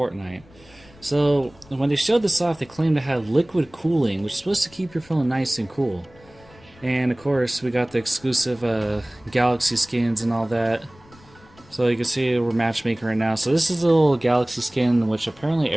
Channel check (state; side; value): noise; left; rumble, 26 dB below the sound